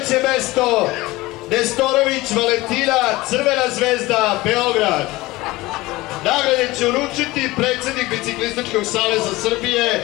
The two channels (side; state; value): right; quieter; 19.8 dB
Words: mesto, Nestorović Valentina, Crvena zvezda, Beograd. Nagrade će uručiti predsjednik Biciklističkog saveza